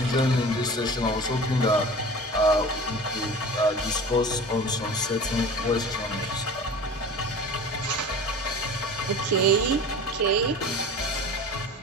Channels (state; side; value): normal; both; correlation 0.38